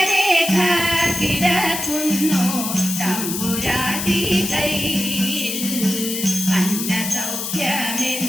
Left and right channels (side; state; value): left; noise; hiss, 4 dB below the sound